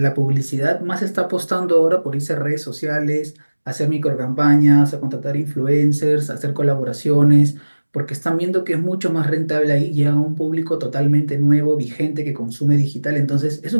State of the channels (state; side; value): inverted; both; correlation -1.00